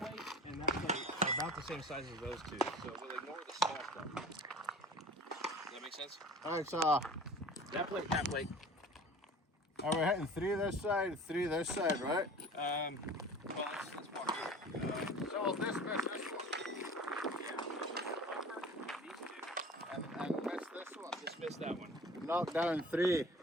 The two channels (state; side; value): normal; both; correlation 0.42